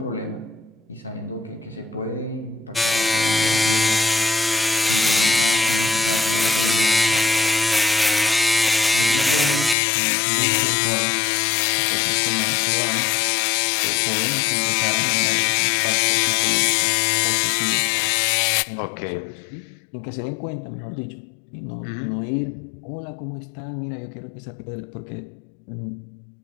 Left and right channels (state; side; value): drops out; right; at 9.8 s